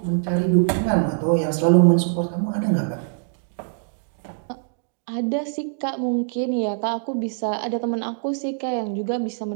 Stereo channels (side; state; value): left; silent; digital silence